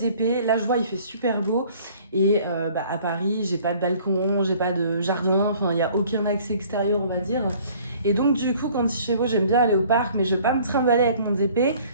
Là, je vois, il fait super beau. Et à Paris, j'ai pas de balcon, j'ai pas de jardin, enfin, il n'y a aucun accès extérieur, on va dire. Et donc, du coup, quand il fait beau, j'aime bien aller au parc, mais je vais pas me trimballer avec mon DP.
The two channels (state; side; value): inverted; both; correlation -0.54